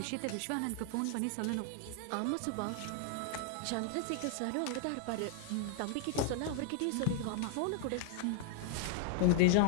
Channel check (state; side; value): different; both; correlation 0.00